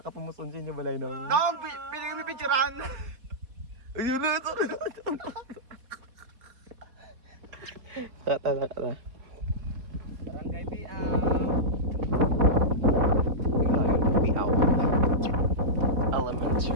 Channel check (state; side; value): late; left; 4.3 ms